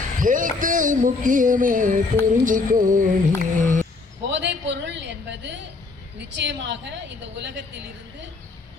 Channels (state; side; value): quieter; right; 3.8 dB